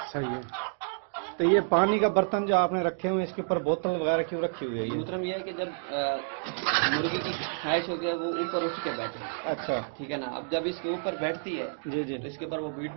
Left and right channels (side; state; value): left; silent; digital silence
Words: صحیح ہے۔ تو یہ پانی کا برتن جو آپ نے رکھے ہوئے ہیں، اس کے اوپر بوتل وغیرہ کیوں رکھی ہوئی ہے یہ؟ محترم یہ ہے کہ جب مرغی کی خواہش ہوتی ہے وہ اوپر اٹھ کے بیٹھے، اچھا، ٹھیک ہے نا، اب جب اس کے اوپر بیٹھتی ہے جی، جی، تو اس کے اوپر وہ بیٹ